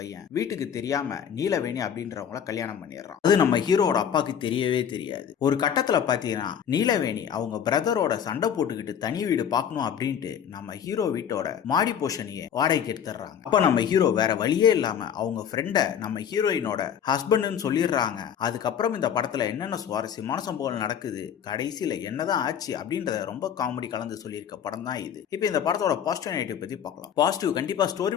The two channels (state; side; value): quieter; right; 8.6 dB